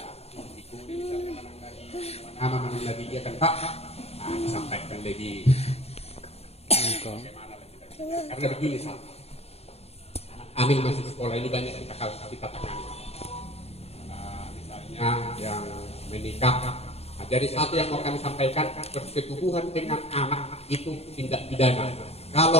ikuti nama lagi dia kan Pak, disampaikan lagi. Karena begini Pak. Amin masih sekolah ini banyak kita tangani. Misalnya yang menikah. Nah, jadi satu yang mau kami sampaikan, persetubuhan dengan anak itu tindak pidana.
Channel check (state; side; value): late; right; 0.30 ms